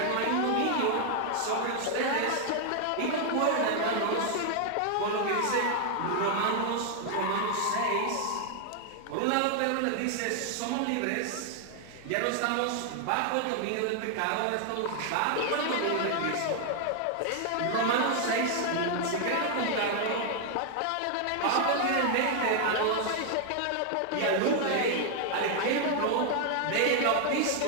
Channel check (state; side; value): different; both; correlation 0.00